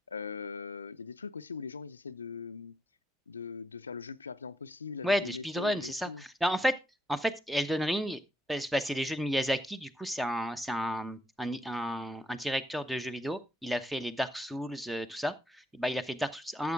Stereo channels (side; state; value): both; normal; correlation 0.77